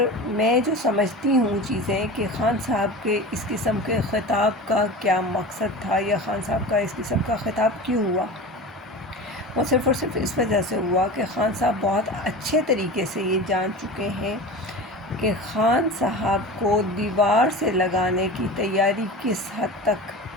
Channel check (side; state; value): both; normal; correlation 0.32